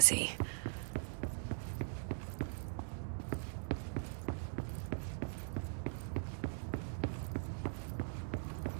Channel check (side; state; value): left; silent; digital silence